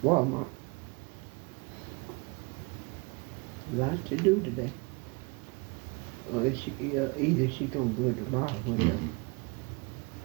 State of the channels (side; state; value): left; quieter; 29.1 dB